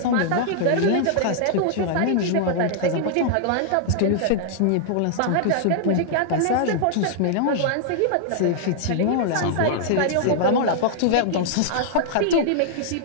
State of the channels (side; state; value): both; different; correlation -0.01